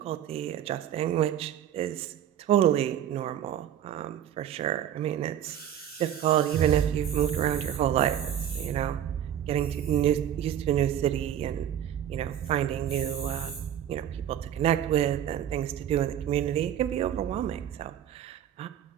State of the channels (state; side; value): quieter; left; 10.4 dB